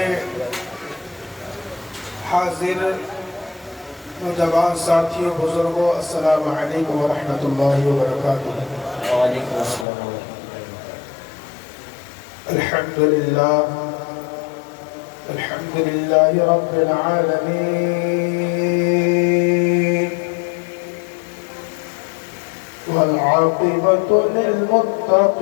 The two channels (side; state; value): right; drops out; at 9.9 s